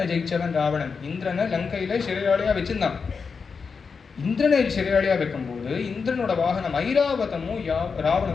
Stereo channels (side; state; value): right; quieter; 5.4 dB